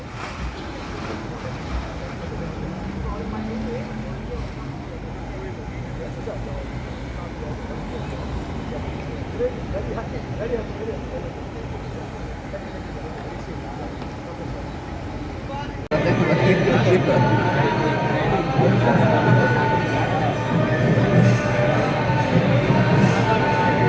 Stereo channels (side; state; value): both; identical; correlation 1.00